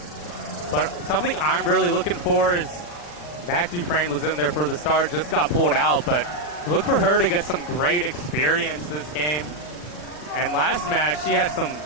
but something I'm really looking for is Mac Dufresne was in there for the start, just got pulled out, but look for her to get some great experience this game. And last match, she had some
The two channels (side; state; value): right; late; 40 ms